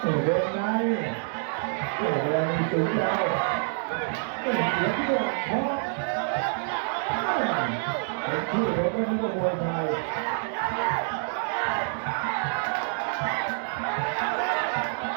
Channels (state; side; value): silent; left; 58 dB below the other